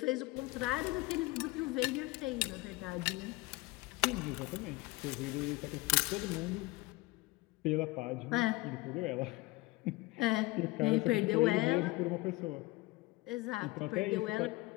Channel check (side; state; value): right; quieter; 21.5 dB